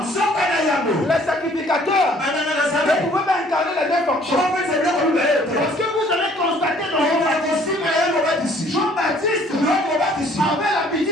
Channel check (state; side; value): normal; both; correlation 0.58